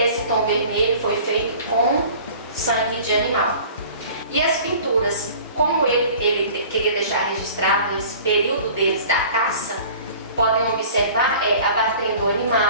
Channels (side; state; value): both; inverted; correlation -0.45